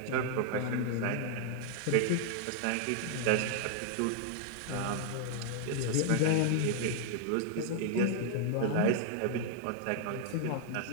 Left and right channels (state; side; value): different; both; correlation 0.00